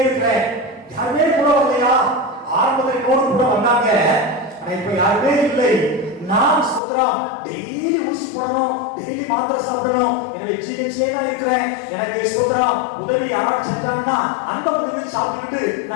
இருக்கிறேன். யாருமே கூட வரலையா? ஆரம்பத்தில் நோடு கூட வந்தாங்க, ஆனா இப்ப யாருமே இல்லை. நான் ஸ்தோத்திரம் டெய்லி ஊசி போடணும், டெய்லி மாத்திரை சாப்பிடணும், என்னுடைய ஜிஹெச்ல தான் இருக்கிறேன். எனக்கு ஸ்தோத்திரம் உதவி யாராவது செஞ்சாங்கன்னா அந்த உதவி சாப்பிட்டுட்டு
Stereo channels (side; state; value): right; drops out; at 6.8 s